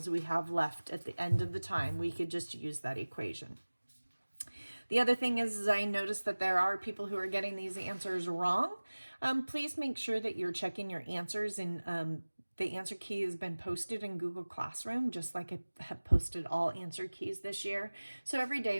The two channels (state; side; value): inverted; both; correlation -1.00